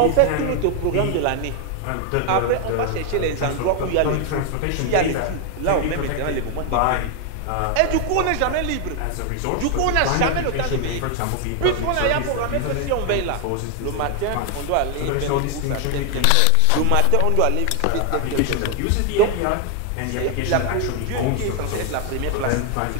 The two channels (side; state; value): both; different; correlation 0.00